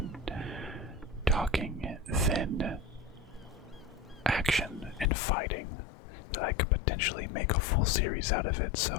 talking than action and fighting, that I could potentially make a full series out of it.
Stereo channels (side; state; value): right; drops out; at 5.1 s